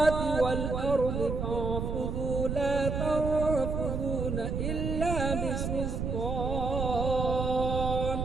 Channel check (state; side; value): noise; right; rumble, 2 dB below the sound